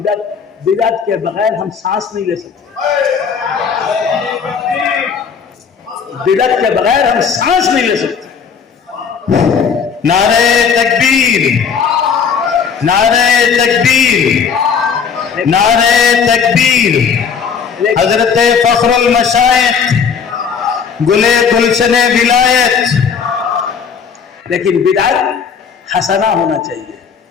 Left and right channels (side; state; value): right; quieter; 6.4 dB